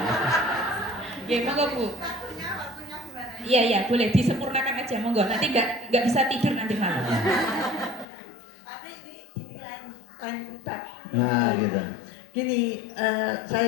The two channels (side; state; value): right; drops out; at 8.1 s